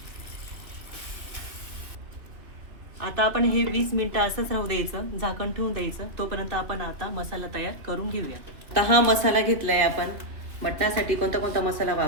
आता आपण हे 20 मिनिटं असंच राहू द्यायचं, झाकण ठेवून द्यायचं. तोपर्यंत आपण आता मसाला तयार करून घेऊया. तर हा मसाला घेतलाय आपण. मटणासाठी कोणता कोणता मसाला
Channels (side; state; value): left; late; 2.5 ms